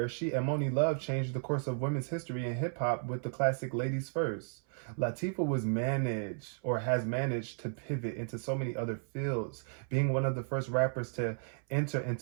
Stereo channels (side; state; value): left; silent; 55 dB below the other